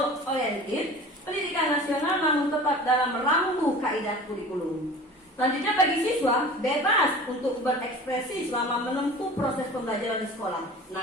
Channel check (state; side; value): normal; both; correlation 0.40